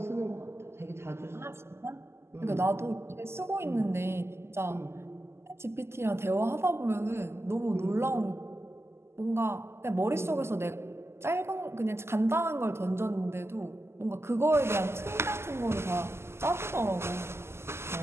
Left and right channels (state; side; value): late; left; 0.12 ms